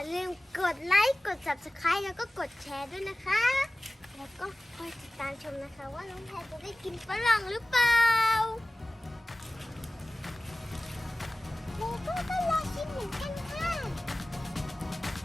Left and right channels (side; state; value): both; normal; correlation 0.97